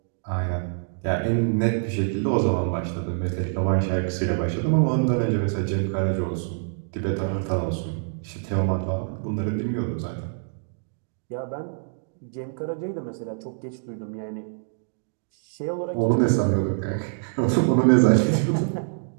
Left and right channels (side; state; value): left; silent; digital silence